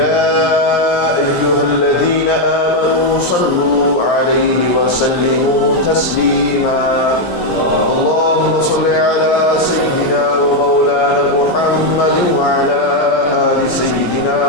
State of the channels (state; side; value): late; right; 17 ms